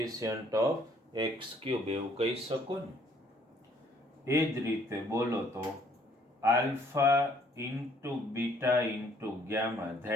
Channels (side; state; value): both; normal; correlation 0.63